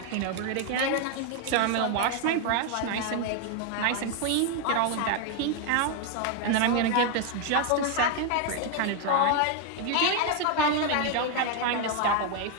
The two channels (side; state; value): both; different; correlation 0.01